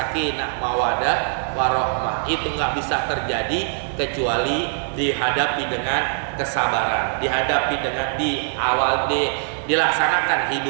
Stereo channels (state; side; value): silent; left; digital silence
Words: mawadah, warohmah. Itu nggak bisa terjadi kecuali dihadapi dengan kesabaran, dihadapi dengan dilaksanakan